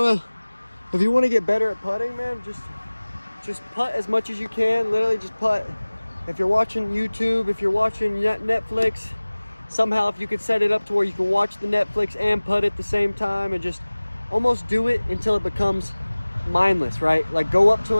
to get better at putting, man, just putt as much as you can. Literally just putt. If you're watching YouTube, if you're watching Netflix, somehow if you could set it up to where you can watch the Netflix and putt at the same time, and just almost do it until it becomes mindless, right? Like go up to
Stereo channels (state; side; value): inverted; both; correlation -1.00